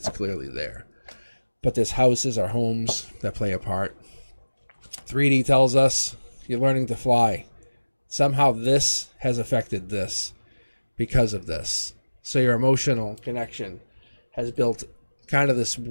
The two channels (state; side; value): inverted; both; correlation -1.00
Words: clearly there. But there's houses or homes that play a part. 3D tells us you're learning to fly. Somehow this has affected this because of this. So your emotional connection has built kind of this